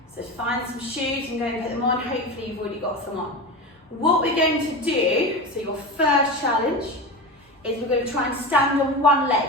So find some shoes and go and put them on. Hopefully you've already got some on. What we're going to do, so your first challenge, is we're going to try and stand on one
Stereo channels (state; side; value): normal; both; correlation 0.24